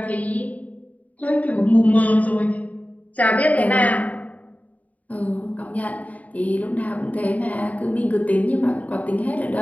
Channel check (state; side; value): late; right; 0.072 ms